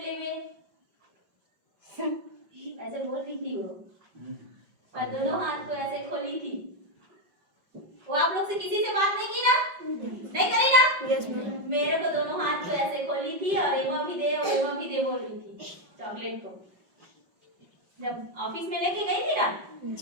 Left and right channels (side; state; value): left; late; 5.5 ms